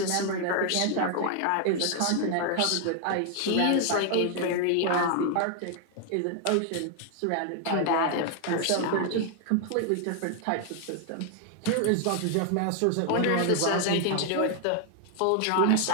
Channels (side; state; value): both; different; correlation 0.00